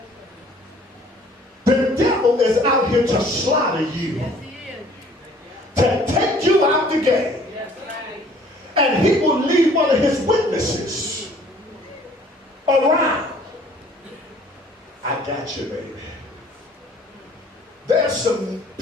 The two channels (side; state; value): both; normal; correlation 0.55